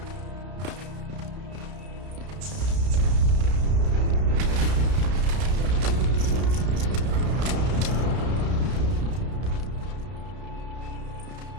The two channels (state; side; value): late; left; 32 ms